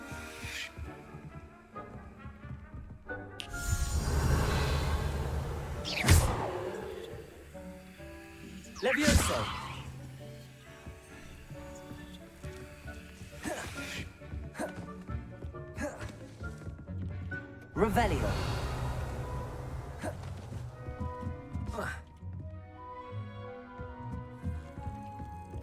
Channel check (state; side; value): identical; both; correlation 1.00